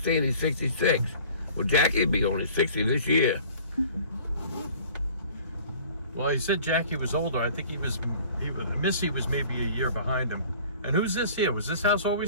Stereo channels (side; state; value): both; inverted; correlation -0.48